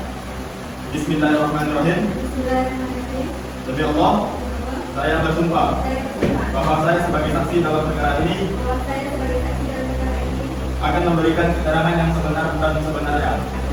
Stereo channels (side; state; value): both; identical; correlation 1.00